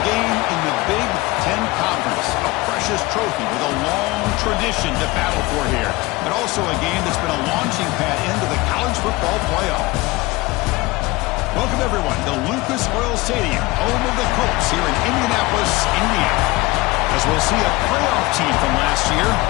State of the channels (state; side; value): quieter; right; 21.6 dB